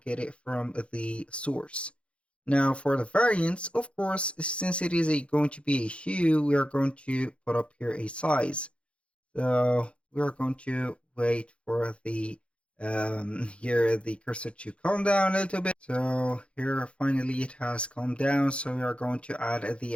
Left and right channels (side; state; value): right; late; 0.060 ms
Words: get it from the source. Now for the variants, of course, since it is going to be a shoe, we are going to put up here a size. So we are going to wait for the here the cursor to calm down a little bit. So here finally it has calmed down. So we are going to add the